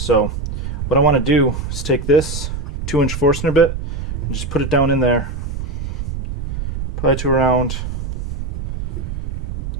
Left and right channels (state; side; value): noise; right; rumble, 5 dB below the sound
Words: what I want to do is take this 2-inch Forstner bit and just put it down in there. Probably to around,